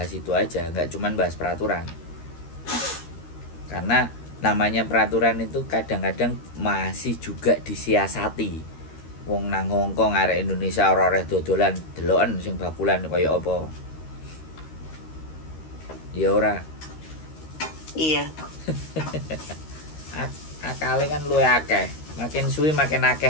itu aja, nggak cuman bahas peraturan. Karena namanya peraturan itu kadang-kadang masih juga disiasati. Wong nang Hongkong arek Indonesia ora oleh dodolan deloken sing bakulan kaya apa. Ya ora. Iya. Akale kan luwih akeh. Makin suwi makin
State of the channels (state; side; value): late; right; 13 ms